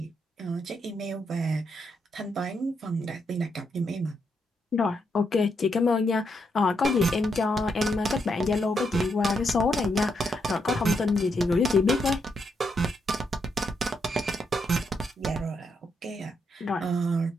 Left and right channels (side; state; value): both; normal; correlation 0.79